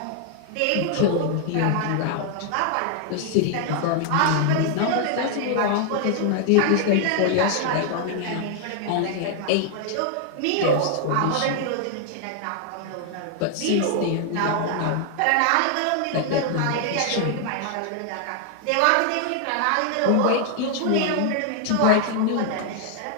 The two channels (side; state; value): both; different; correlation 0.00